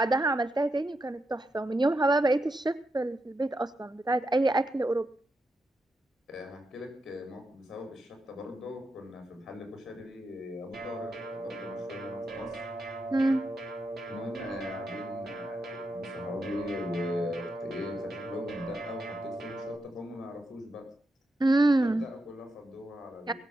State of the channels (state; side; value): normal; both; correlation 0.84